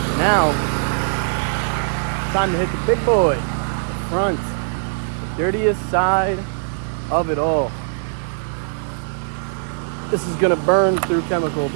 Now, time to hit the big boy. The front. The dirtiest side of it all. this is gonna burn through chemical,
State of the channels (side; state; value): left; silent; digital silence